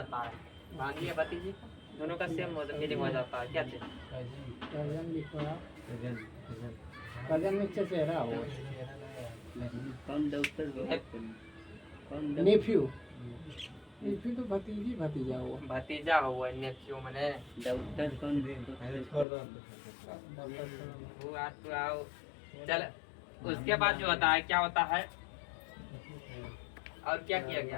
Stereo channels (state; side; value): drops out; right; at 19.2 s